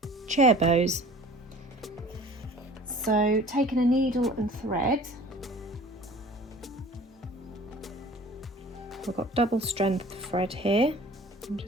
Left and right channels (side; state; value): both; normal; correlation 0.46